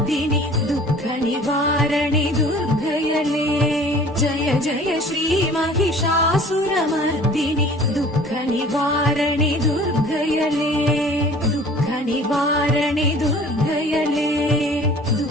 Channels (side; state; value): both; normal; correlation 0.48